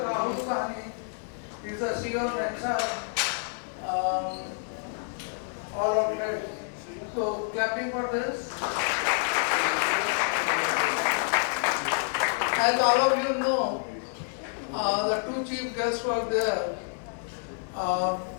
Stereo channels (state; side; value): silent; right; 59 dB below the other